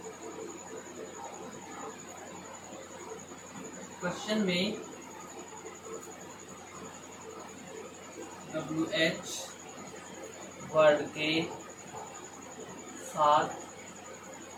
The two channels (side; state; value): both; identical; correlation 1.00